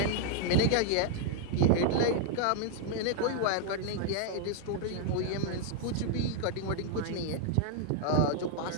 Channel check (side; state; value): both; different; correlation 0.00